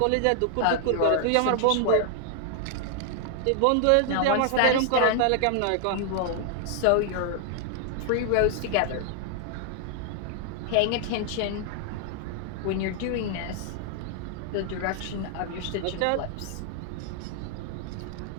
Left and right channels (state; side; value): different; both; correlation 0.00